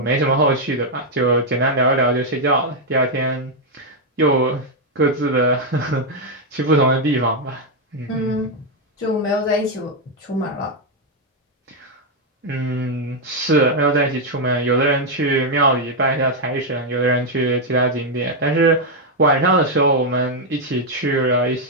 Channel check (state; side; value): normal; both; correlation 0.01